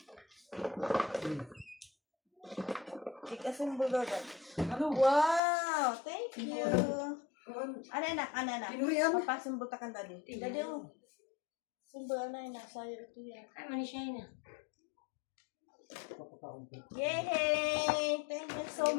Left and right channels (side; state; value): right; drops out; at 5.4 s